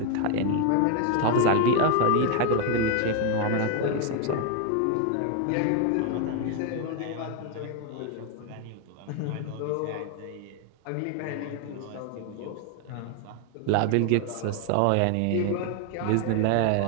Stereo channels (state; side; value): different; both; correlation 0.01